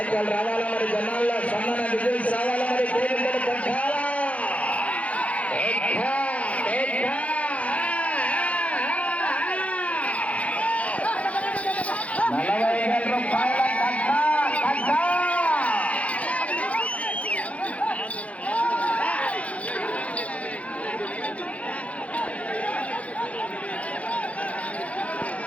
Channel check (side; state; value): right; late; 0.065 ms